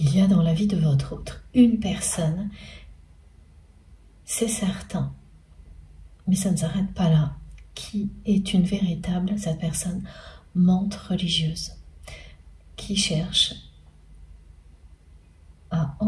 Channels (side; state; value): both; identical; correlation 1.00